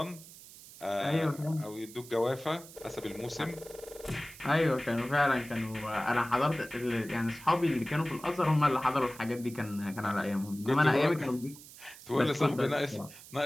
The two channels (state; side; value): noise; right; hiss, 18 dB below the sound